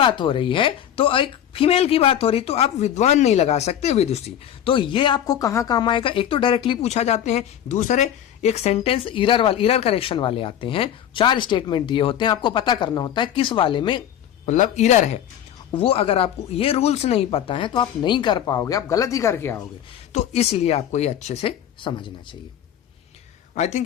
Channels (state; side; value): quieter; right; 10.3 dB